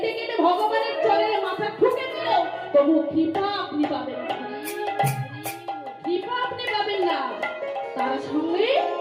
কেঁদে ভগবানের চরণে মাথা ঠুকে দিল, তবু কৃপা আপনি পাবেন না, কৃপা আপনি পাবেন না। তার সঙ্গে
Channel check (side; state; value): both; identical; correlation 1.00